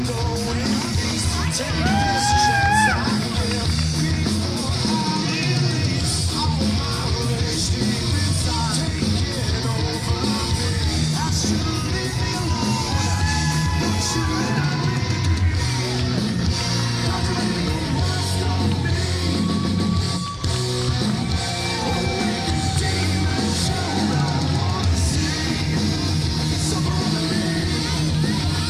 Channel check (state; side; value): identical; both; correlation 1.00